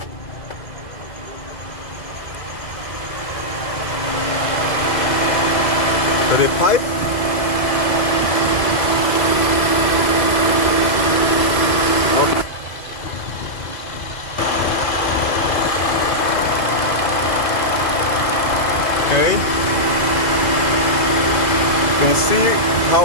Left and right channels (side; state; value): right; late; 2.0 ms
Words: the pipe. Okay, you can see